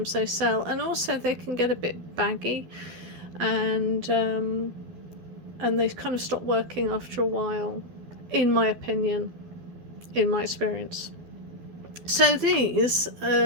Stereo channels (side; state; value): left; late; 12 ms